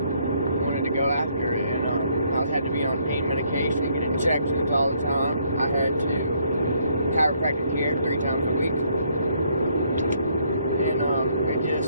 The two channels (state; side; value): inverted; both; correlation -0.69